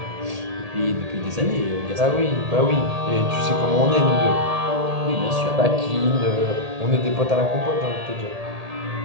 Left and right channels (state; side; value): late; left; 1.8 ms